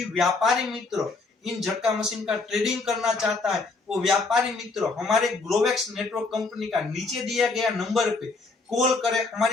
व्यापारी मित्र इन झटका मशीन का ट्रेडिंग करना चाहता है, वो व्यापारी मित्र हमारे ग्रोवेक्स नेटवर्क कंपनी का नीचे दिया गया नंबर पे कॉल करे,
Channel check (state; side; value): quieter; right; 3.8 dB